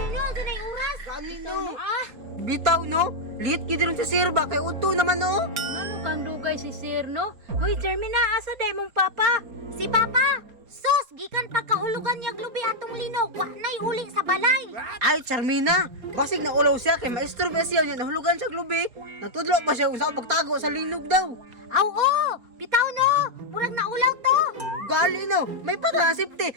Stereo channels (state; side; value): late; left; 4.3 ms